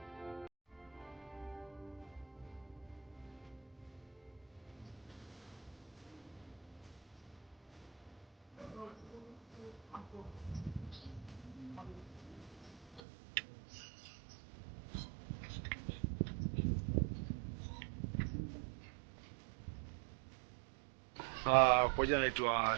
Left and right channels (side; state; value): left; drops out; at 13.0 s